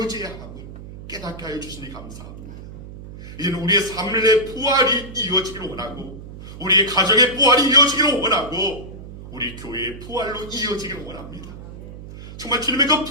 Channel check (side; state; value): right; noise; hum, 13 dB below the sound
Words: 함을 깨닫게 하여 주시니 감사합니다. 이제는 우리의 삶의 부활이 이어지기를 원하고 우리의 가정의 부활이 이어지기를 원하고 우리 교회의 부활로 이어지기를 원합니다. 정말 주님의 그